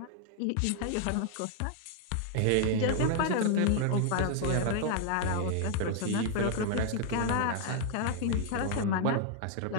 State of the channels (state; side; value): different; both; correlation 0.00